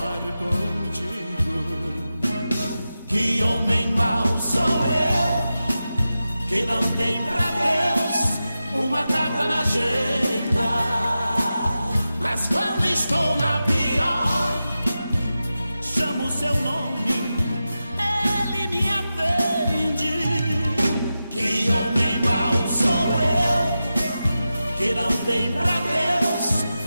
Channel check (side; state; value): both; inverted; correlation -0.92